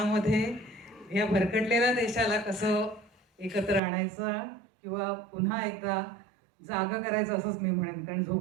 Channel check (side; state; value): left; drops out; at 3.8 s